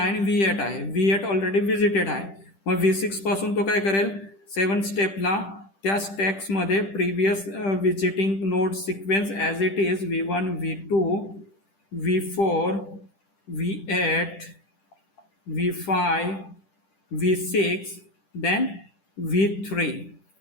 आणि V8 आहे. V8 ऑलरेडी विजिटेड आहे. मग V6 पासून तो काय करेल, 7 स्टेपला त्या स्टॅक्समध्ये previous visiting node sequence as it is V1 V2 V4 V8 V5 V6 then V3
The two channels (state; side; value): late; right; 10 ms